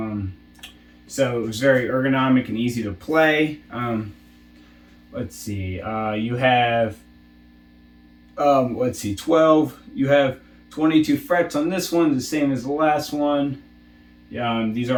So it was very ergonomic and easy to play. Let's see. You have, 12. You have 22 frets on this one, the same as the last one. These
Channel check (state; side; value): identical; both; correlation 1.00